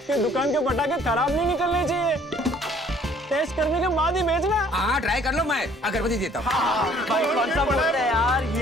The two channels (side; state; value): both; normal; correlation 0.58